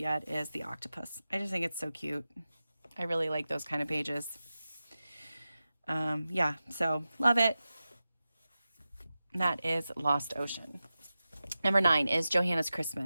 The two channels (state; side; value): inverted; both; correlation -0.94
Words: is the octopus. I just think it's so cute. I really like those kind of pages. Yeah, so love it. That is Lost Ocean. Number 9 is Johanna's